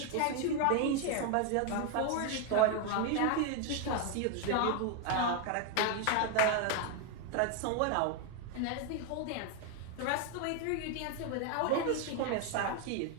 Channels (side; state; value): both; different; correlation 0.01